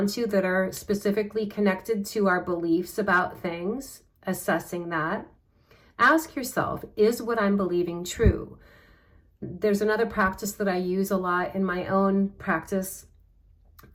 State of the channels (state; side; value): identical; both; correlation 1.00